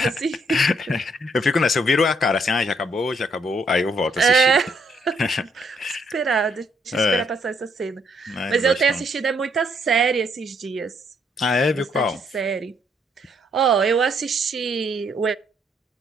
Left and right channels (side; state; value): both; normal; correlation 0.70